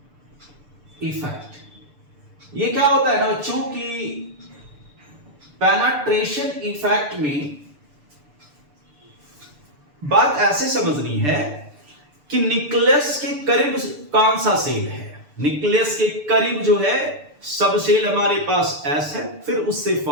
effect. ये क्या होता है ना बच्चों की, पेनिट्रेशन इफेक्ट में बात ऐसे समझनी है कि न्यूक्लियस के करीब कौन सा सेल है, न्यूक्लियस के करीब जो है सब सेल हमारे पास S है, फिर उससे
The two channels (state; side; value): late; left; 6.8 ms